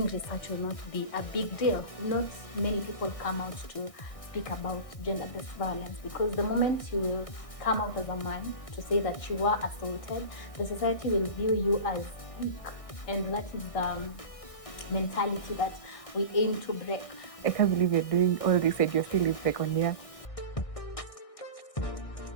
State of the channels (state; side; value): late; right; 1.6 ms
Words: research will not be a big deal. Not many people come out to speak about gender-based violence, because the moment you will come out as a man to say that you were assaulted, the society will view you as weak, and that is the mentality that we aim to break. I can't believe you're doing all this and you're still in second year.